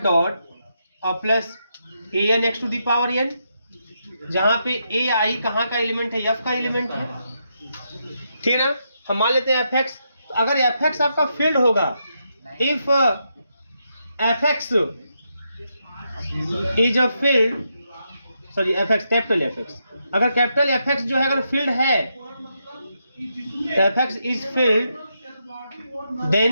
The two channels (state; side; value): inverted; both; correlation -0.82